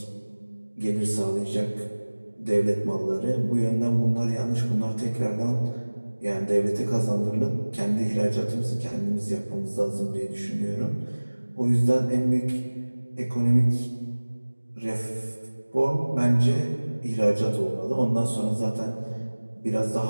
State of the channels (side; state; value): both; inverted; correlation -1.00